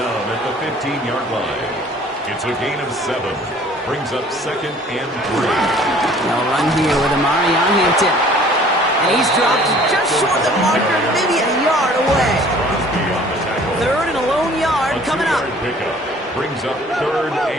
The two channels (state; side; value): normal; both; correlation 0.52